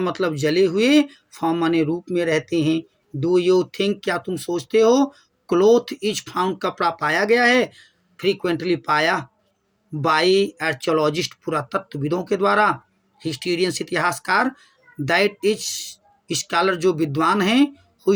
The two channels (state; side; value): identical; both; correlation 1.00